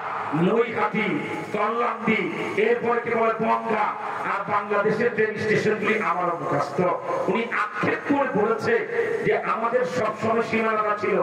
নৈহাটি, কল্যাণী, এরপর কি বলে বনগা, আর বাংলাদেশের ট্রেন স্টেশনগুলি আমার মুখস্থ। উনি আক্ষেপ করে বলেছে যে আমাদের সবসময় সীমানা ছিল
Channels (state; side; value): identical; both; correlation 1.00